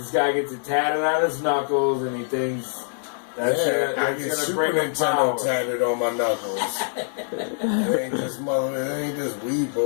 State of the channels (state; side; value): silent; right; digital silence